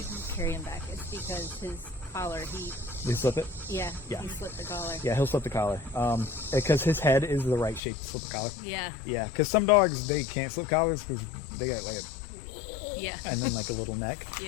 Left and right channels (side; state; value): right; drops out; at 7.8 s